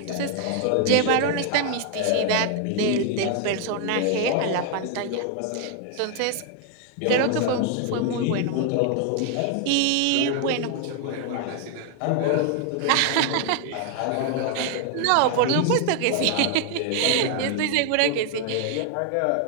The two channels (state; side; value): different; both; correlation 0.00